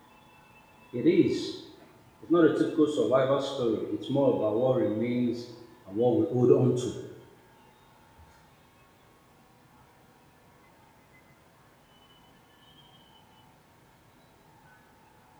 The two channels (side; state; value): both; identical; correlation 1.00